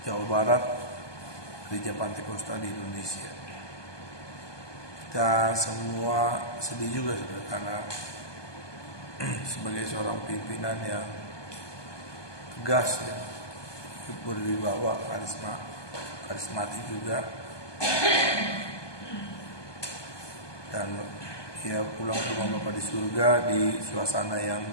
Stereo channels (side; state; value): right; late; 1.2 ms